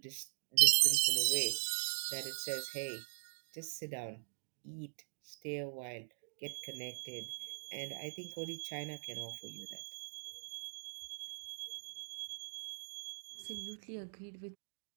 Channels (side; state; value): left; silent; digital silence